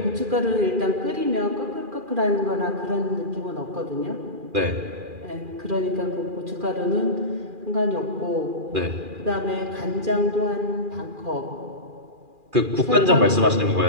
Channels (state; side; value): late; left; 2.4 ms